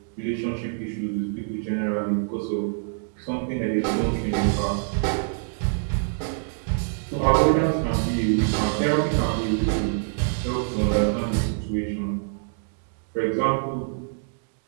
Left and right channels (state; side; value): silent; left; digital silence